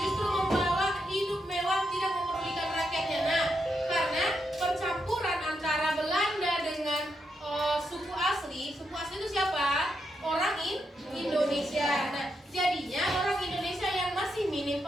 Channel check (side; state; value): both; normal; correlation 0.82